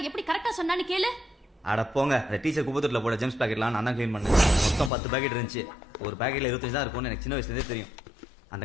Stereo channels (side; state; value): right; drops out; at 4.9 s